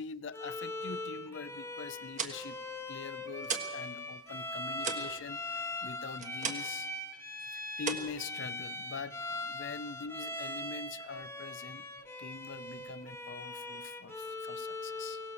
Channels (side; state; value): both; normal; correlation 0.10